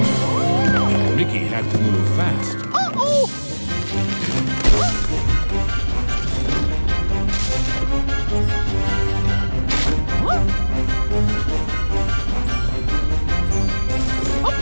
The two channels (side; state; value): both; inverted; correlation -1.00